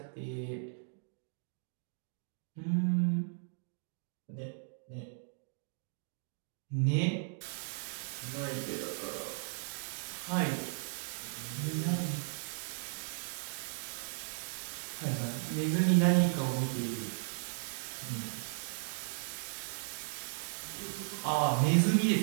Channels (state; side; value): silent; left; digital silence